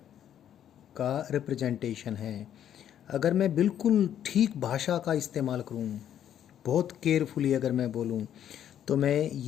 का representation है। अगर मैं बिल्कुल ठीक भाषा का इस्तेमाल करूं, बहुत केयरफुली अगर मैं बोलूं, तो मैं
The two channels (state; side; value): quieter; right; 10.1 dB